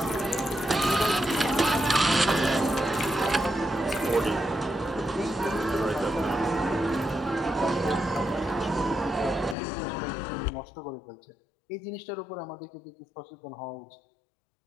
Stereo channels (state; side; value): drops out; right; at 9.6 s